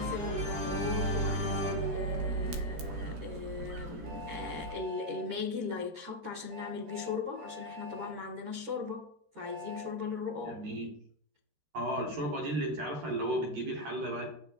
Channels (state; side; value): late; left; 14 ms